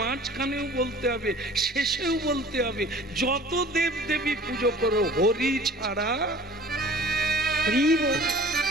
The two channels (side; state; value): both; normal; correlation 0.46